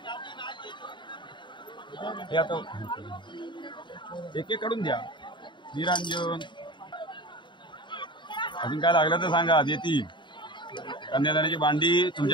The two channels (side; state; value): right; late; 0.23 ms